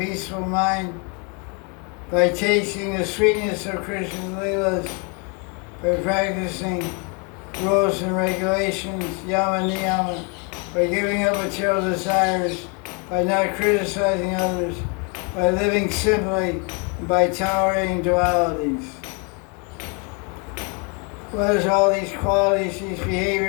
mind, by tasting the sweetness of Krishna's Leelas, by practicing rules and regulations, yama niyama, by giving up material desires, by not criticizing others, by living simply, and by tolerating dualities. What is all these qualities, these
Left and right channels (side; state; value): right; quieter; 33.6 dB